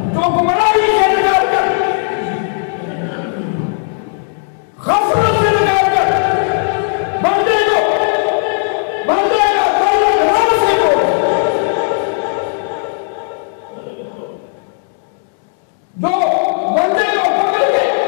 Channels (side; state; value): right; silent; 67 dB below the other